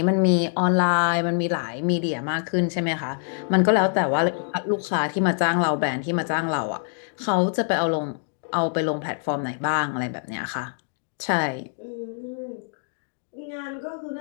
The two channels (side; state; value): right; silent; digital silence